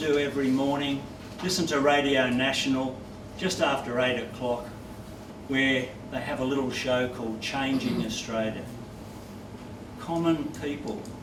every morning, listen to Radio National just after 8 o'clock, where they have a little show called Changing Australia. Common people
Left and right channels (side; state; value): both; identical; correlation 1.00